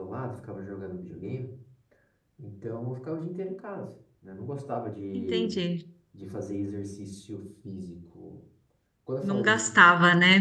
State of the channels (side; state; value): both; identical; correlation 1.00